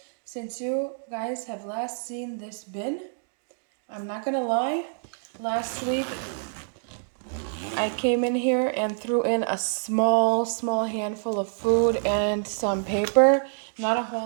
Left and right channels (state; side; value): silent; left; digital silence